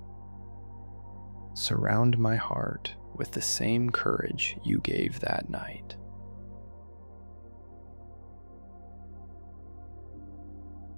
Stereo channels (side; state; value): both; inverted; correlation -1.00